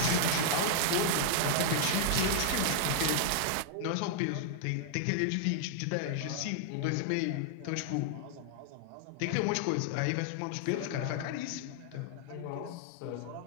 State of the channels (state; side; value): different; both; correlation -0.01